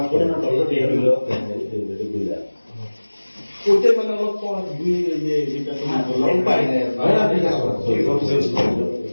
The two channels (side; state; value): both; inverted; correlation -1.00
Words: ওইটাই মানে অলপ যেটা তোমার পাই না